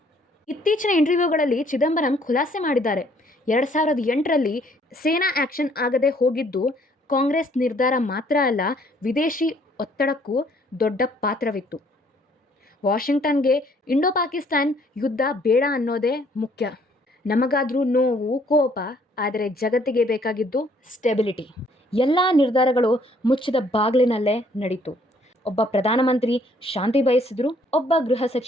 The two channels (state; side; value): normal; both; correlation 0.63